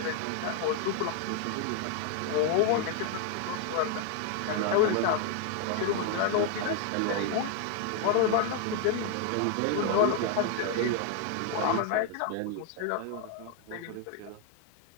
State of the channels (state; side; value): different; both; correlation 0.00